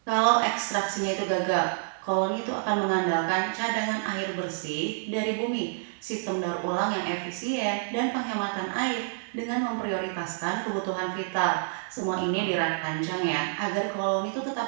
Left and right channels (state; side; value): silent; left; digital silence